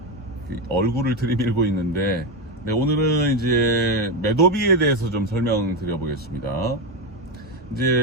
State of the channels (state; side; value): normal; both; correlation 0.11